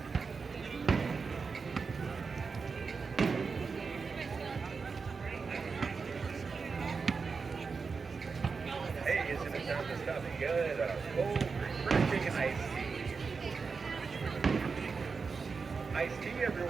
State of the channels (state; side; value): quieter; left; 5.0 dB